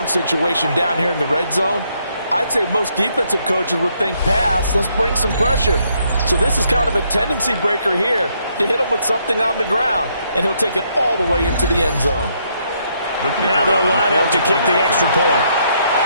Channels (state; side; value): inverted; both; correlation -0.73